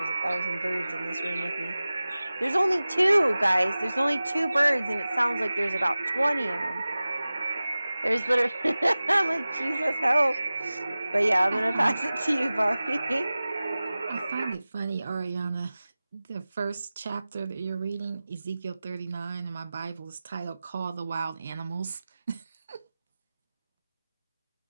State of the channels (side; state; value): both; inverted; correlation -0.97